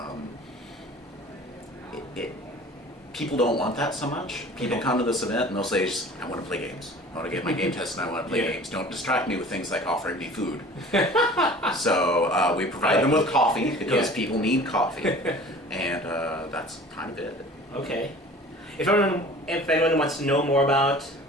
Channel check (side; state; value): both; normal; correlation 0.44